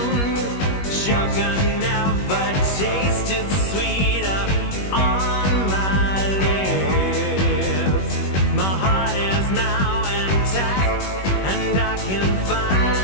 Sugar never tasted sweeter on my lips. My heart is now intact, and I can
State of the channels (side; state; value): right; late; 21 ms